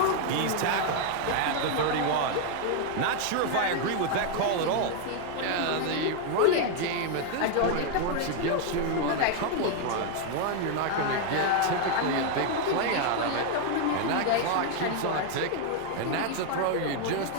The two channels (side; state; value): both; different; correlation 0.00